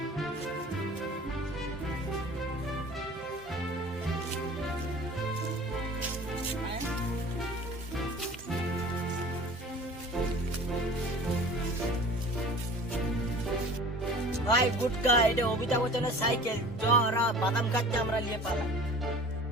ভাই গুটকা এটা অমিতাভ বচ্চনের সাইকেল, চ ওরা বাদাম খাচ্ছে আমরা নিয়ে পালাম।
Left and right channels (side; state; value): both; normal; correlation 0.43